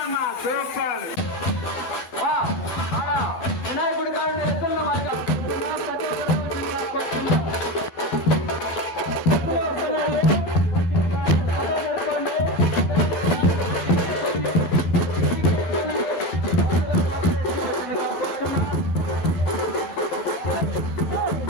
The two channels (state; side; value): late; right; 12 ms